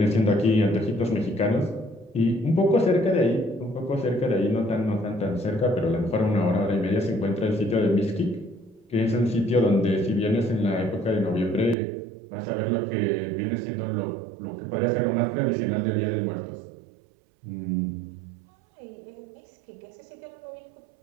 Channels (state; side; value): drops out; left; at 11.8 s